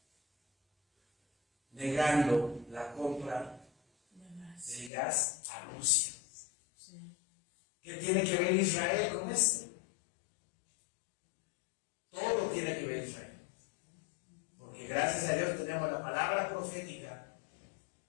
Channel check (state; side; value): drops out; right; at 4.9 s